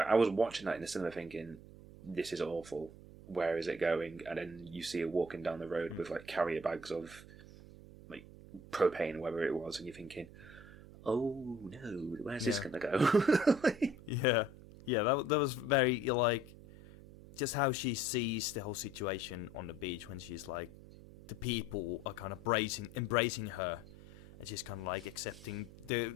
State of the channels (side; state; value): right; noise; hum, 18 dB below the sound